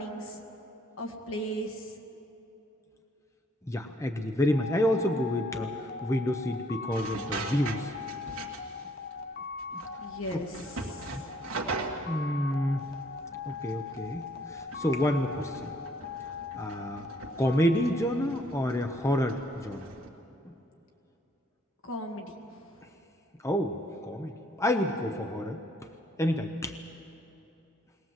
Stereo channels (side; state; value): both; normal; correlation 0.65